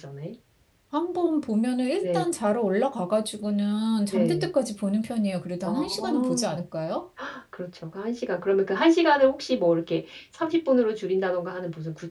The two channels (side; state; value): both; identical; correlation 1.00